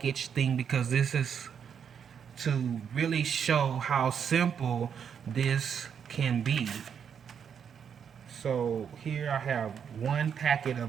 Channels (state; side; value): quieter; left; 7.5 dB